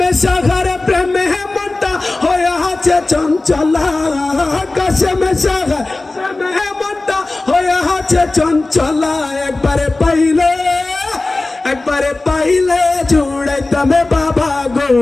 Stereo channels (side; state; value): right; quieter; 3.1 dB